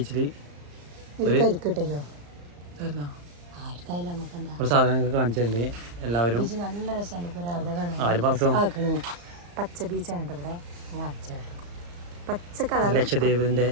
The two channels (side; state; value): left; late; 34 ms